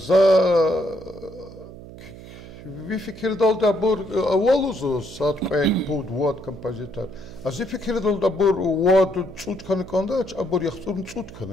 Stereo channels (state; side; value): noise; right; hum, 16 dB below the sound